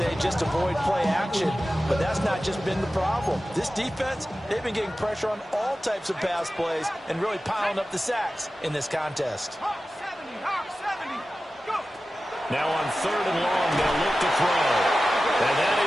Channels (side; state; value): both; normal; correlation 0.95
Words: just avoid play action, but that's not just been the problem. This defense, they've been getting pressure on all types of pass plays and really piling up the sacks in this contest. Now on 3rd and long, they'll look to throw.